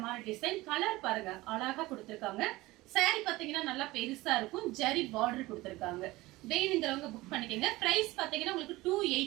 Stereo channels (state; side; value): quieter; left; 19.6 dB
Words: மாதிரி டிசைன் கலர் பாருங்க அழகா கொடுத்திருக்காங்க. saree பாத்தீங்கன்னா நல்லா பெருசா இருக்கும். ஜரி பார்டர் கொடுத்திருக்காங்க. வேணுங்கிறவங்க புக் பண்ணிக்கங்க. பிரைஸ் பாத்தீங்கன்னா உங்களுக்கு